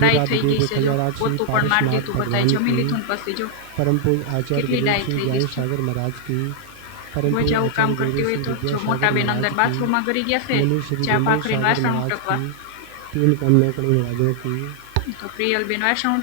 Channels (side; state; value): both; different; correlation 0.00